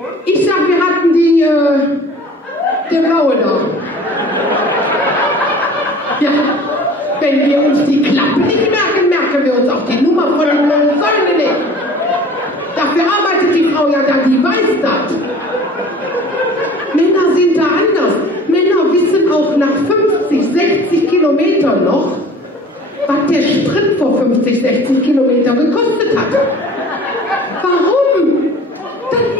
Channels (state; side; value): normal; both; correlation 0.45